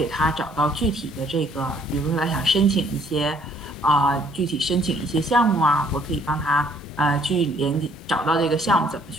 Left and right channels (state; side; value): normal; both; correlation 0.62